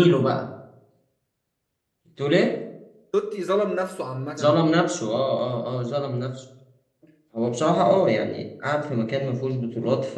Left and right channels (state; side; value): identical; both; correlation 1.00